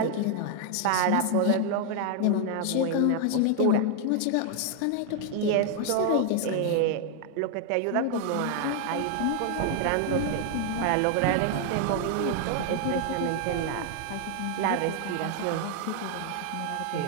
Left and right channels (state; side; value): different; both; correlation 0.00